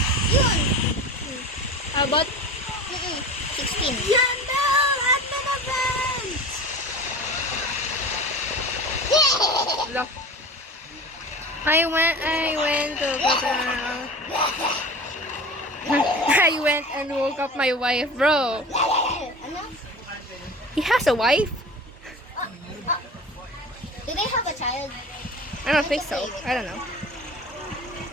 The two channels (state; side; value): normal; both; correlation 0.35